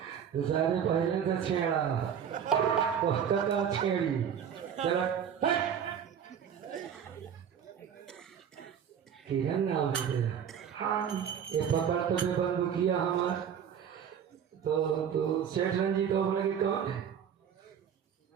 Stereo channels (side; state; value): left; quieter; 8.3 dB